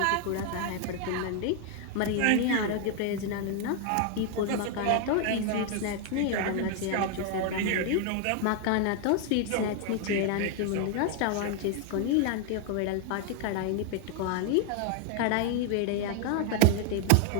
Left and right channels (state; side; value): different; both; correlation 0.00